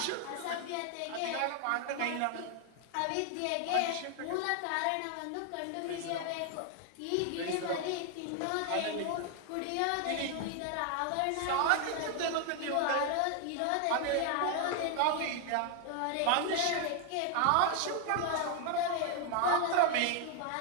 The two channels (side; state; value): both; different; correlation 0.00